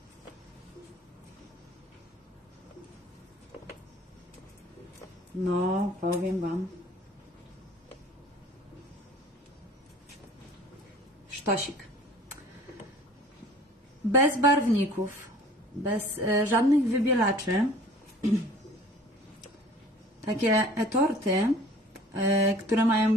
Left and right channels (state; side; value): normal; both; correlation 0.49